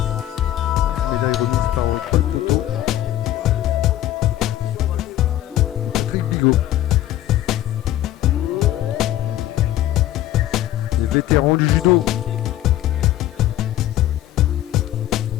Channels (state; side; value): quieter; right; 13.3 dB